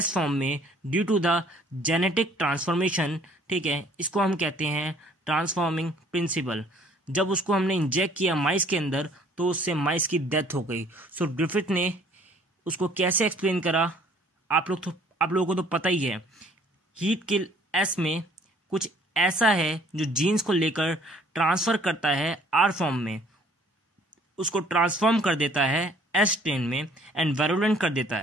फॉर्म में due to the genetic transformation. ठीक है, इसको हम कहते हैं ट्रांसफॉर्मिंग प्रिंसिपल। जब उसको हमने इंजेक्ट किया माइस के अंदर तो उससे माइस की डेथ हो गई। सो ग्रिफिथ ने उसको कैसे एक्सप्लेन करा, आप लोगों को तो पता ही है। हीट किल एस में कुछ ऐसा है जो जीन्स को लेकर ट्रांसफ़र करता है आर फॉर्म में, उसको ट्रांसफॉर्म कर देता है एस स्ट्रेन में एंड वायरुलेंट कर देता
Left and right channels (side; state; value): both; normal; correlation 0.57